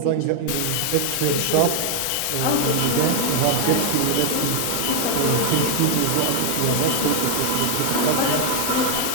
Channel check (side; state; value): both; different; correlation 0.00